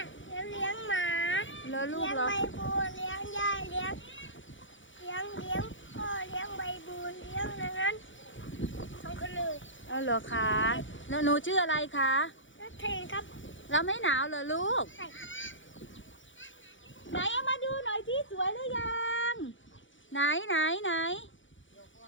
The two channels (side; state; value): right; late; 0.56 ms